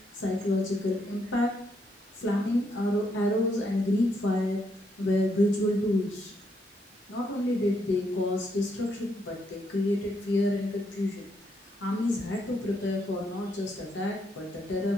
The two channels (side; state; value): both; normal; correlation 0.76